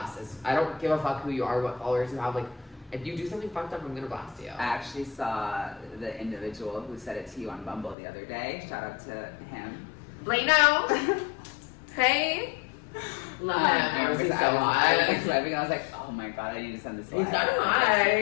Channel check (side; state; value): right; drops out; at 8.0 s